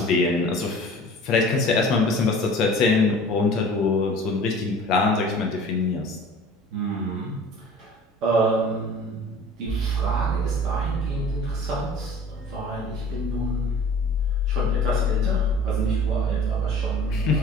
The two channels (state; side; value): normal; both; correlation 0.45